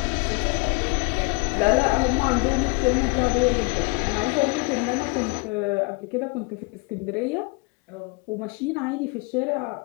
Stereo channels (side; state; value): right; quieter; 29.2 dB